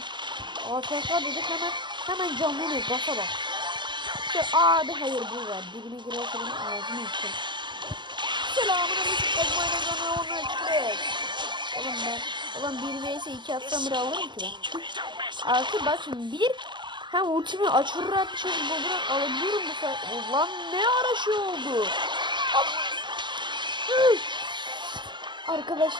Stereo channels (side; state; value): left; late; 0.22 ms